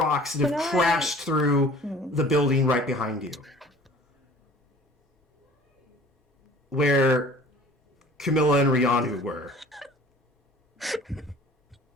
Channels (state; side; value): normal; both; correlation 0.48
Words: that have Can I- crashed through the building right behind you. Where Camilla and Rianu were.